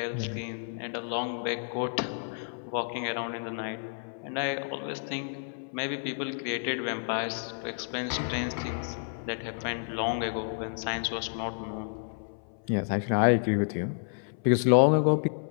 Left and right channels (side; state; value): right; silent; 58 dB below the other